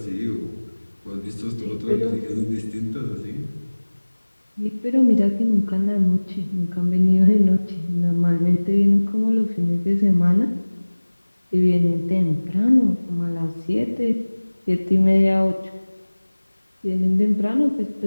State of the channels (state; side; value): inverted; both; correlation -1.00